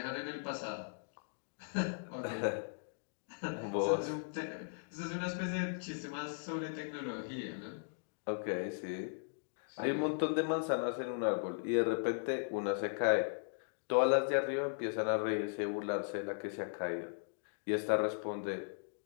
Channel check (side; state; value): right; silent; digital silence